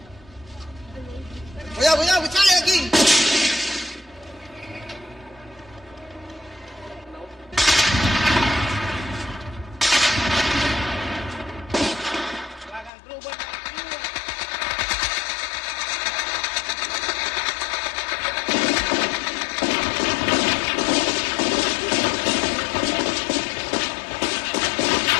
Cuidado, cuidado, muchachos.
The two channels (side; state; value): right; drops out; at 12.9 s